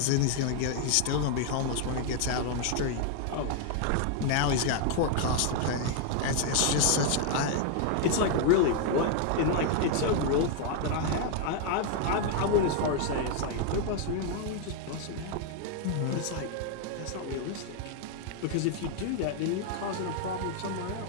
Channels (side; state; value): both; different; correlation 0.00